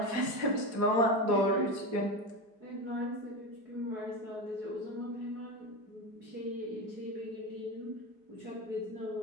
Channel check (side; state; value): left; late; 4.8 ms